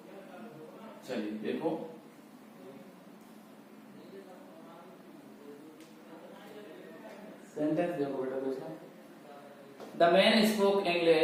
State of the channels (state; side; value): identical; both; correlation 1.00